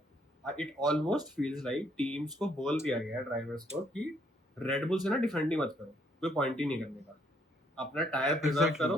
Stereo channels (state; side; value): normal; both; correlation 0.69